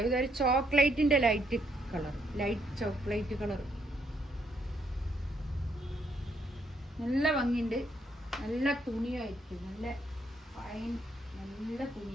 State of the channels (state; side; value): normal; both; correlation 0.72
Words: ഇതൊരു ചോക്ലേറ്റിൻ്റെ light colour, light chocolate colour. നല്ല ഭംഗിയുണ്ട്, നല്ല തുണിയായിരിക്കും, നല്ല ഫൈൻ, നല്ല